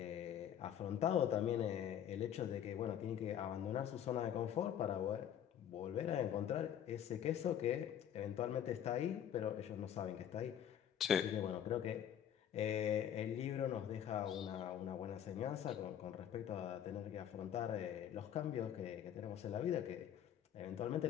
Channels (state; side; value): quieter; right; 9.8 dB